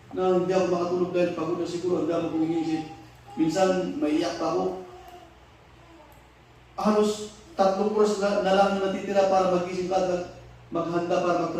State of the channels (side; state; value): both; identical; correlation 1.00